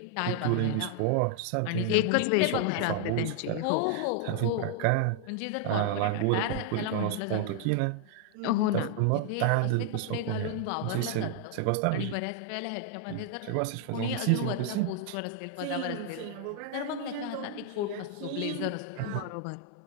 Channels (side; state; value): both; different; correlation 0.00